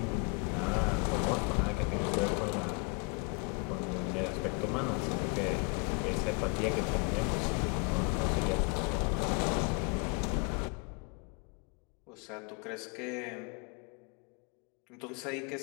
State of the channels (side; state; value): right; quieter; 33.8 dB